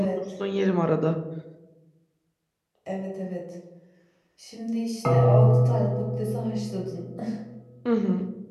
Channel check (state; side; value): identical; both; correlation 1.00